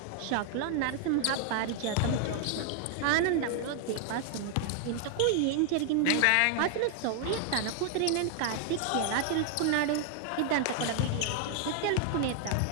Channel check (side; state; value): both; different; correlation 0.00